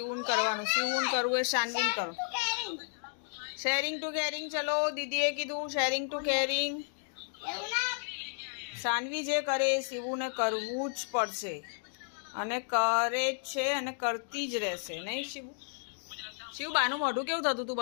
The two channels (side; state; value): right; silent; digital silence